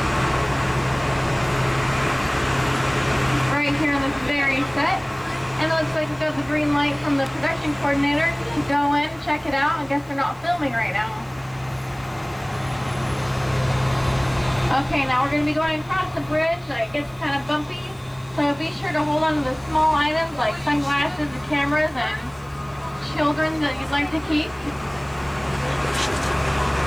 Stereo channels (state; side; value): noise; left; hiss, 29 dB below the sound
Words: Right here in this very set. And it looks like we got the green light from the production coordinator to go in, check it out. I guess they're not filming right now. Okay, now we're going to be going across the bridge. It gets kind of bumpy. So be sure to hold on to the small items like sunglasses and cameras and children that you'd like to keep.